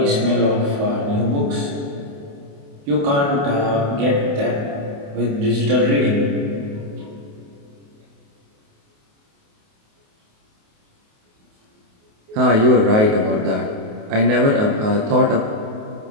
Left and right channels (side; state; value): left; late; 28 ms